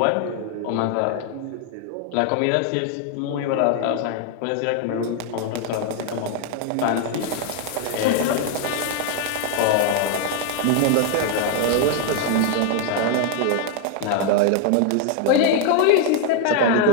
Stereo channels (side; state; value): both; different; correlation 0.01